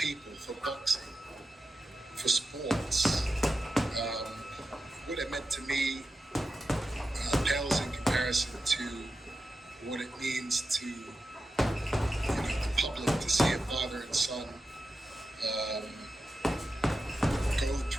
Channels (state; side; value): normal; both; correlation 0.91